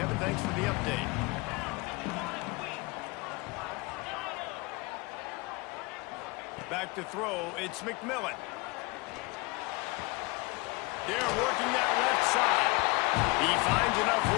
thanks for the update. Back to throw, it's McMillan. They're working that left side. He finds enough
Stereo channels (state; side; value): quieter; right; 24.9 dB